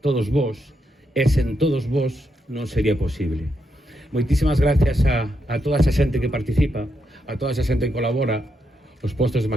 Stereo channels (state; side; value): normal; both; correlation 0.82